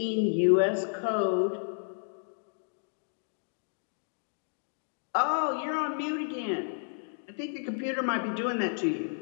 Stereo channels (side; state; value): right; silent; digital silence